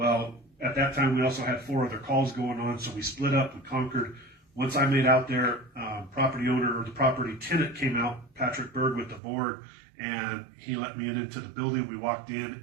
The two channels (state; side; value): drops out; left; at 9.2 s